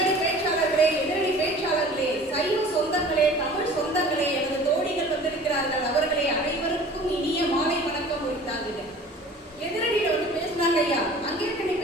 பேச்சாளர்களே, எதிரணி பேச்சாளர்களே, சைவ சொந்தங்களே, தமிழ் சொந்தங்களே, எனது தோழிகள் வந்திருக்கிறார்கள், அவர்களே அனைவருக்கும் இனிய மாலை வணக்கம் உரித்தாங்க. எதிரடியில பேசினாங்க ஐயா, அங்கேற்கனவே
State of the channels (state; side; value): normal; both; correlation 0.45